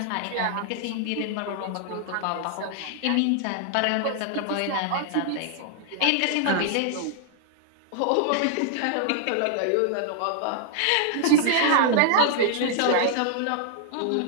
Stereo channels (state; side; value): different; both; correlation -0.01